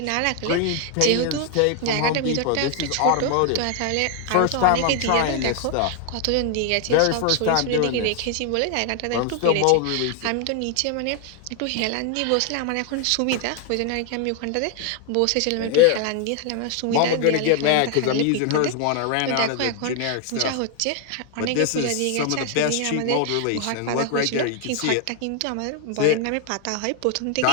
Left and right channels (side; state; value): both; different; correlation 0.00